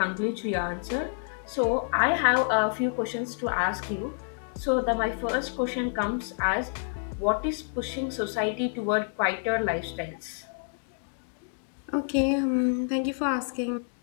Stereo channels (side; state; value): right; silent; 59 dB below the other